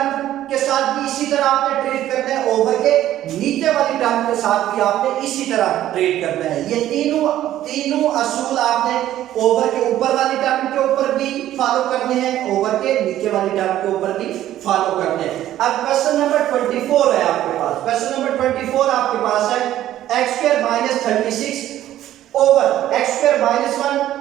के साथ भी इसी तरह आपने ट्रीट करना है, ओवर के नीचे वाली टर्म के साथ भी आपने इसी तरह ट्रीट करना है। ये तीनों असूल आपने ओवर के ऊपर वाली टर्म के ऊपर भी फॉलो करने हैं, ओवर के नीचे वाली टर्म के ऊपर भी फॉलो करने हैं। अब क्वेश्चन नंबर 24 है आपके पास। क्वेश्चन नंबर 24 आपके पास है x² - 36 over x² - 1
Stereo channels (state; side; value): quieter; left; 12.9 dB